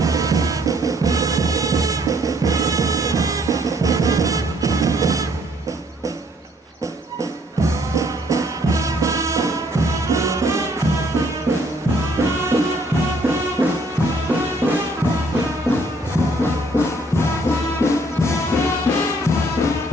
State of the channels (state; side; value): normal; both; correlation 0.64